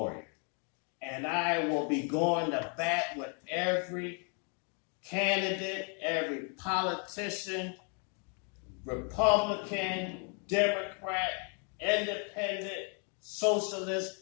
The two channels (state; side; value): quieter; right; 38.3 dB